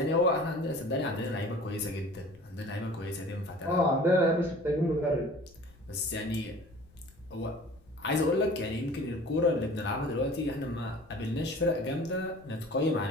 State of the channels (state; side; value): noise; left; rumble, 27 dB below the sound